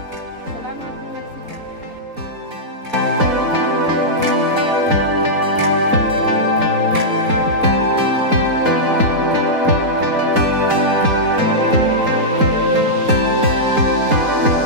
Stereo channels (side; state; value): left; late; 4.1 ms